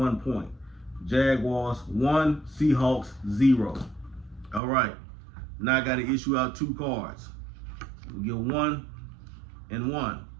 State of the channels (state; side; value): drops out; left; at 4.6 s